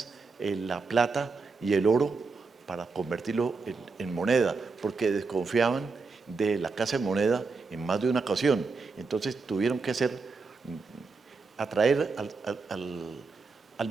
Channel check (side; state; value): left; quieter; 4.3 dB